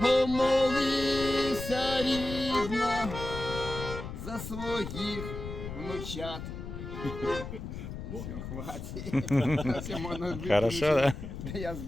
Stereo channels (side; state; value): left; noise; rumble, 8 dB below the sound